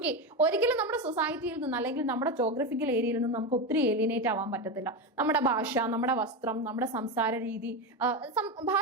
ഒരിക്കലും നമ്മുടെ സൊസൈറ്റിയിൽ നിന്ന് അല്ലെങ്കിൽ നമ്മുടെ ജോഗ്രഫിക്കൽ ഏരിയയിൽ നിന്ന് നമുക്ക് ഒത്തിരി ഏലിയനേറ്റ് ആവാൻ പറ്റത്തില്ല. നമ്മുടെ ഭാഷ, നമ്മുടെ വസ്ത്രം, നമ്മുടെ സംസാര രീതി,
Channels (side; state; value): both; normal; correlation 0.15